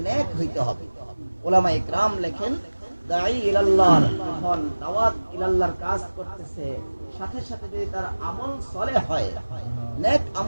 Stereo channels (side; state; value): both; inverted; correlation -1.00